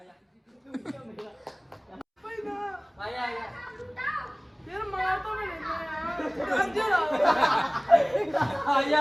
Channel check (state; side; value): identical; both; correlation 1.00